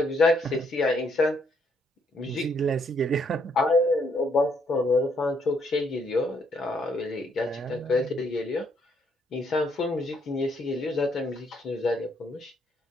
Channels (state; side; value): normal; both; correlation 0.71